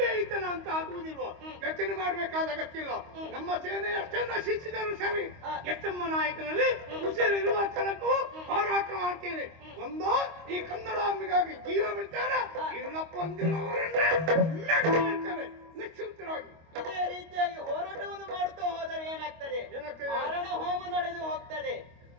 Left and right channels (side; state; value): left; late; 25 ms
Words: ಅಂತ ಆಗುವುದಿಲ್ವೋ? ಯೋಚನೆ ಮಾಡಬೇಕಾದ ಅಗತ್ಯ ಇಲ್ಲ. ನಮ್ಮ ಸೇನೆ ಎಷ್ಟೇ ನಶಿಸಿದರೂ ಸರಿ, ಎಚ್ಚಮ್ಮ ನಾಯಕನಲ್ಲಿ ಉಸಿರಿರುವ ತನಕೂ ಹೋರಾಟ ಮಾಡ್ತೇನೆ. ಒಂದೋ ಈ ಕನ್ನಡಾಂಬಿಗಾಗಿ ಜೀವ ಬಿಡ್ತೇನೆ, ಇಲ್ಲಪ್ಪ ಅಂದಿರುವವರನ್ನೇ ನಿಶ್ಚಿಂತರಾಗಿ ಇದೇ ರೀತಿಯಾಗಿ ಹೋರಾಟವನ್ನು ಮಾಡುತ್ತಾ ಹೋದರೆ ಏನಾಗ್ತದೆ? ಮಾರಣ ಹೋಮ ನಡೆದು ಹೋಗ್ತದೆ.